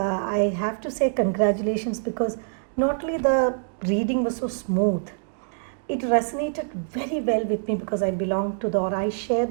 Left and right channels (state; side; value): silent; left; digital silence